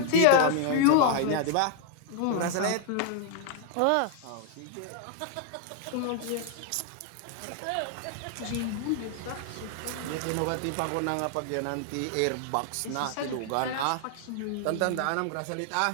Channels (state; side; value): different; both; correlation 0.00